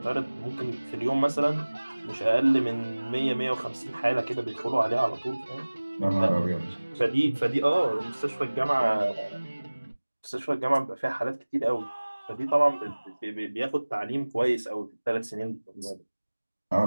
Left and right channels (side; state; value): both; inverted; correlation -1.00